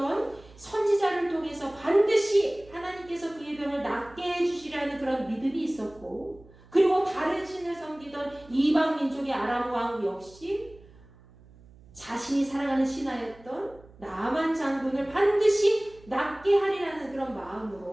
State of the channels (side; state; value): right; noise; hum, 24 dB below the sound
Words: 선지자를 통해서 반드시 하나님께서 그의 병을 낫게 해주시라는 그런 믿음이 있었고, 그리고 다른 신을 섬기던 이방 민족의 아람 왕 역시 자신이 사랑하는 신하였던 나아만 장군을 반드시 낫게 하리라는 그런